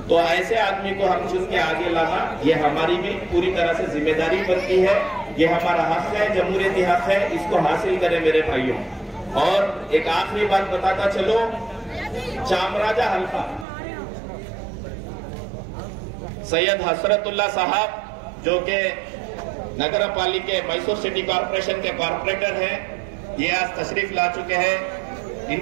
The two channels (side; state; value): left; drops out; at 13.7 s